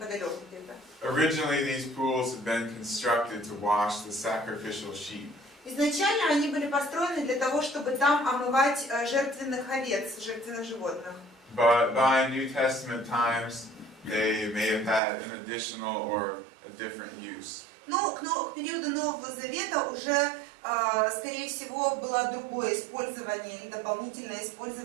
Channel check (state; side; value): drops out; left; at 15.0 s